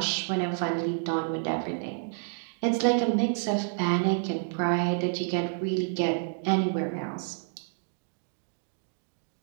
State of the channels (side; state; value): left; silent; digital silence